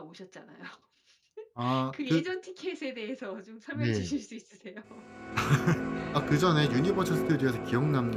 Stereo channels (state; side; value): identical; both; correlation 1.00